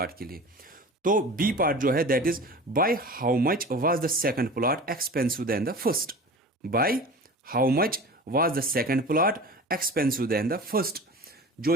के लिए। तो बी पार्ट जो है that is by how much was the second plot expensive than the first. Bye how much was the second plot expensive than the first. जो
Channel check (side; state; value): both; normal; correlation 0.36